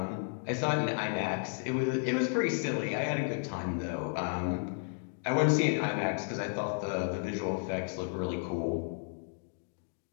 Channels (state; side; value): silent; right; 56 dB below the other